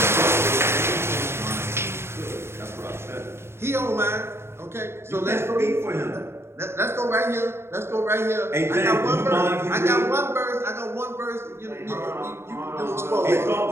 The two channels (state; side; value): late; left; 0.12 ms